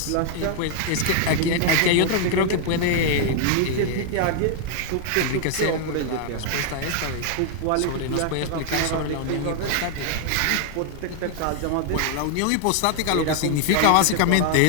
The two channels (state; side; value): different; both; correlation 0.00